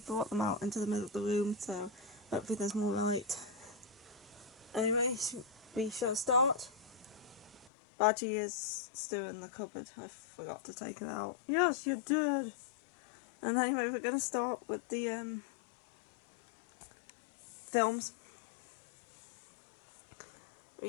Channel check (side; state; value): right; drops out; at 7.7 s